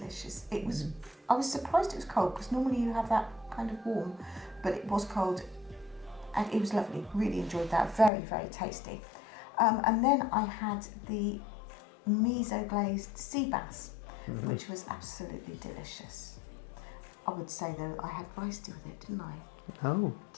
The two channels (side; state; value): right; drops out; at 8.1 s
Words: It was. I was surprised it was cold because normally you have that kind of warm, but it was cold, and it was lovely. Really enjoyed that. Very, very tasty. And then I had the miso glazed sea bass, which was absolutely delicious. I would say though I had rice with it, didn't I? No.